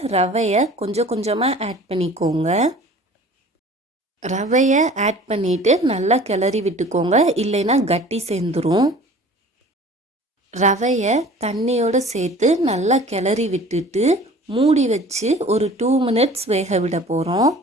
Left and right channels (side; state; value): both; normal; correlation 0.45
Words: ரவையை கொஞ்சம் கொஞ்சமாக ஆட் பண்ணிக்கோங்க. ரவையை ஆட் பண்ணிவிட்டு நல்லா கிளறி விட்டுக்கோங்க, இல்லைன்னா கட்டி சேர்ந்துடும். ரவையை தண்ணியோடு சேர்த்து நல்லா கிளறி விட்டுட்டு மூடி வச்சு ஒரு 2 மினிட்ஸ் வேக விட போகிறோம்.